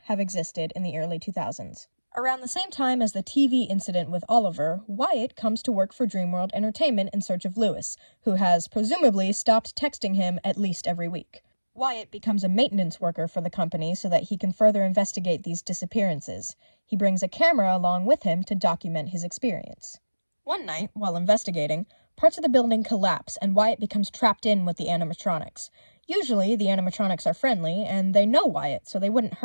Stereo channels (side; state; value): both; inverted; correlation -1.00